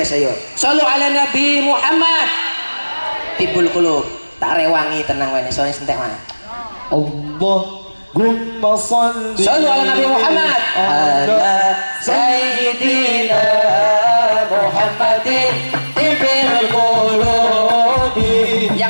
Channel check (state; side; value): inverted; both; correlation -1.00